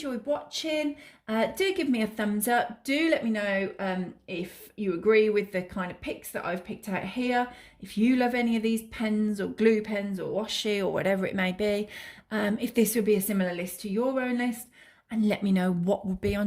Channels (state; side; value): identical; both; correlation 1.00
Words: watching. Do give me a thumbs up. Do let me know if you agree with the kind of picks that I've picked out here. If you love any of these pens or glue pens or washi or whatever it may be. If this would be a similar list to your own list. And let me know what would be